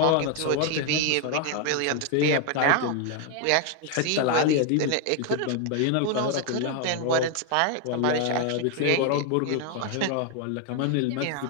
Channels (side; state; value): both; different; correlation 0.00